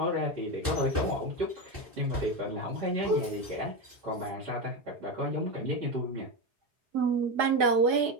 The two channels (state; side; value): late; left; 4.8 ms